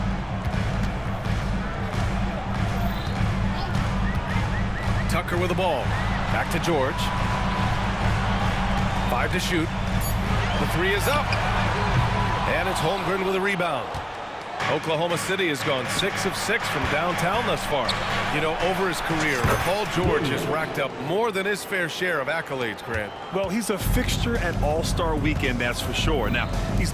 Tucker with the ball. Back to George. 5 to shoot. The 3 is up. And it's Holmgren with a rebound. Oklahoma City has gone 6 of 6 from downtown thus far. You know, over his career, Paul George has racked up more than his fair share of accolades, Grant. Well, he's a fixture at All-Star Weekend, that's for sure. Now, he's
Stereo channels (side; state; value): both; identical; correlation 1.00